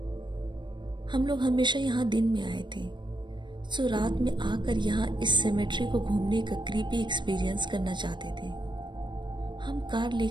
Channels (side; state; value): left; late; 0.22 ms